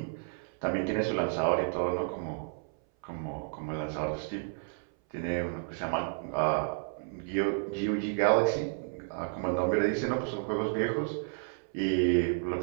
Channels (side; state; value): left; silent; 57 dB below the other